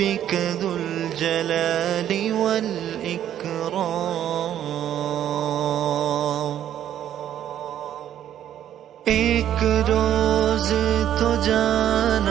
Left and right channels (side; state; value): left; quieter; 10.9 dB